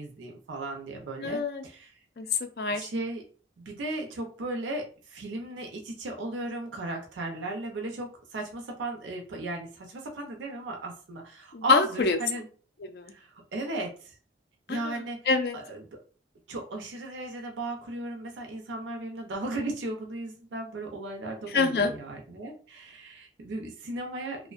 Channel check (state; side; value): normal; both; correlation 0.12